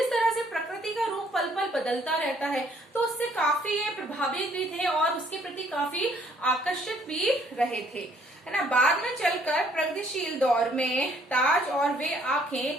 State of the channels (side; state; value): both; normal; correlation 0.64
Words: तरह से प्रकृति का रूप पल पल बदलता रहता है तो उससे काफी ये प्रभावित भी थे और उसके प्रति काफी आकर्षित भी रहे थे, है ना। बाद में चलकर प्रगतिशील दौर में ताज और वे